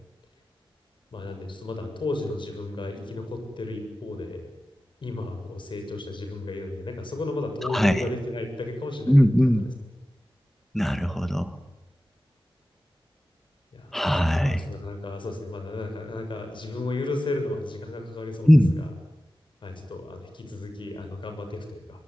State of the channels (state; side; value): normal; both; correlation 0.95